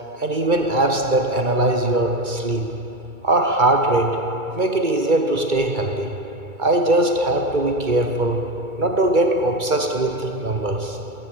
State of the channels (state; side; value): late; left; 2.2 ms